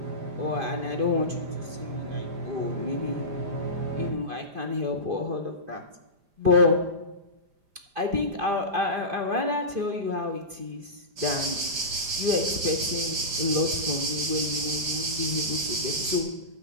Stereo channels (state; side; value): late; left; 5.0 ms